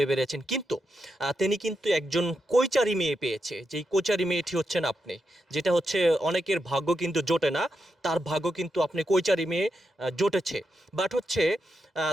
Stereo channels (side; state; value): both; normal; correlation 0.85